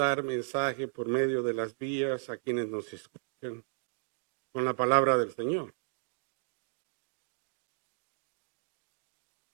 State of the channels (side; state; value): left; silent; digital silence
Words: mensaje por medio de las vías a quienes nos escuchan con la palabra del Señor.